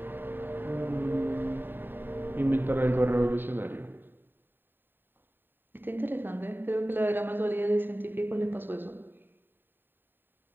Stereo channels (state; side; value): late; left; 0.095 ms